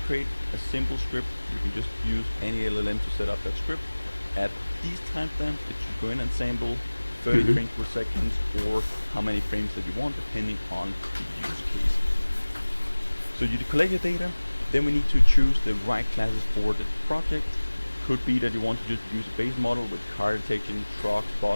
create a simple script. You can just use any LLM to set up that script. At these timestamps, it should go in and sample 30 frames per second, or how many frames that you want, depending on the use case. So you collect your data. Then we need to choose the right classes for the project. Could be that you want to just use a base model with car detection, trucks,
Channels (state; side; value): inverted; both; correlation -1.00